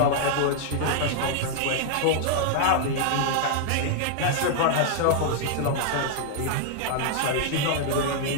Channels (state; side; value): different; both; correlation -0.01